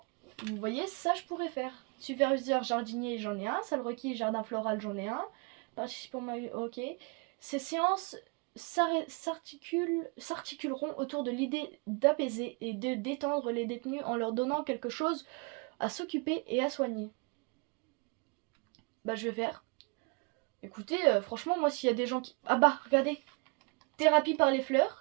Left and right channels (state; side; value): quieter; left; 31.1 dB